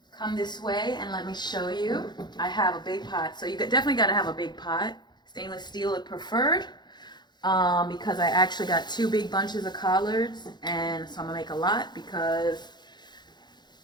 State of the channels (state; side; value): late; right; 0.21 ms